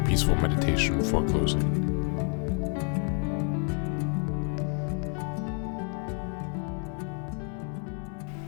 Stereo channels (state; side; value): quieter; right; 38.0 dB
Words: meditation for closing.